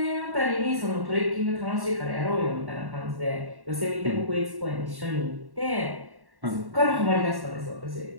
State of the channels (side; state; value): left; late; 1.1 ms